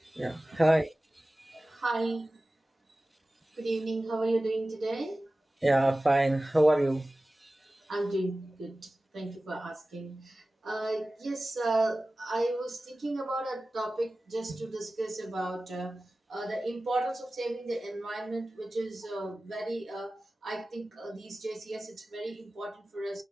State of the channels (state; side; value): normal; both; correlation 0.96